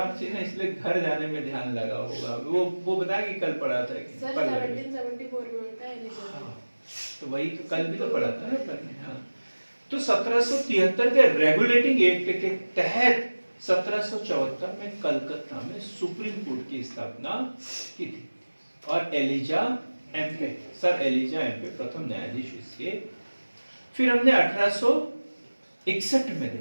थी ना, इसलिए घर जाने में ध्यान लगा होगा। वो बताया कि कल पढ़ा था कि सर 1774 में होता है एलिजाबेथ। हाँ, तो वही तो कल भी तो पढ़ा था ना अपन ने। हाँ, तो 1773 के रेगुलेटिंग एक्ट के तहत 1774 में कलकत्ता में सुप्रीम कोर्ट की स्थापना की थी। और Elijah Impey, sir Elijah Impey प्रथम न्यायाधीश इसके। फिर हमने 1861 में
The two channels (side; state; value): both; inverted; correlation -1.00